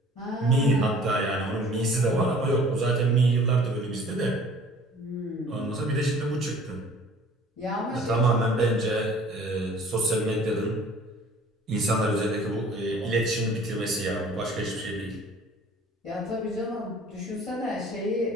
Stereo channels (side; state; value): both; normal; correlation 0.50